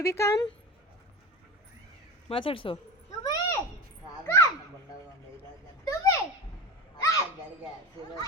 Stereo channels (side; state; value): both; normal; correlation 0.28